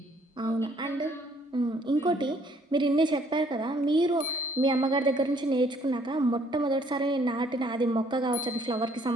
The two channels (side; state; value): both; normal; correlation 0.63